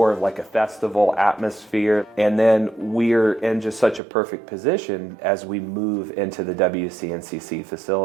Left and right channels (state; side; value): drops out; left; at 4.0 s